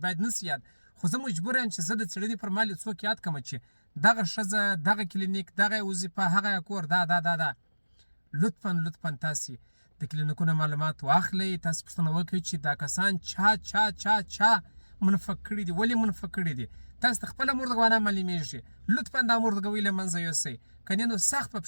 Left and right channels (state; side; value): inverted; both; correlation -1.00